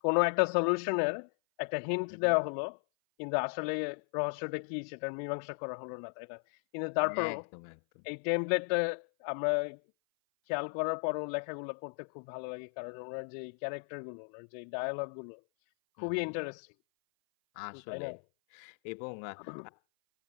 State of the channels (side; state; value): right; silent; 54 dB below the other